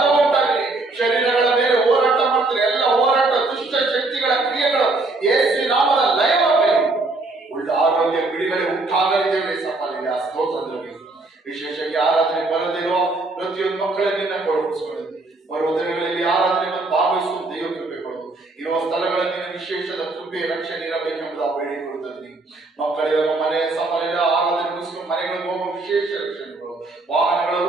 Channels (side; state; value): left; quieter; 3.2 dB